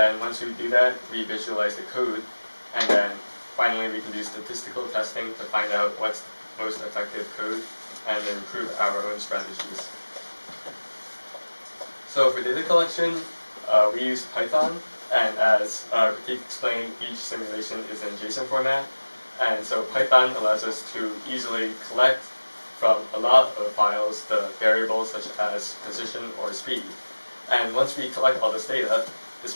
once we do that, we visualize the code, and then finally we can do statistical testing to find out what's the most effective code and improve our own strategies. So for data collection, we use Python, and as Pratik explained, each simulation is in JSON format, and so Python allows us to easily collect from a lot of files the variables such as position or speed. And once we collect all this data,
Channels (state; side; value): inverted; both; correlation -1.00